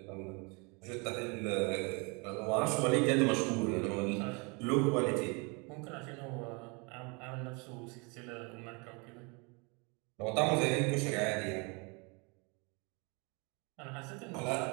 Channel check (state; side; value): quieter; left; 30.8 dB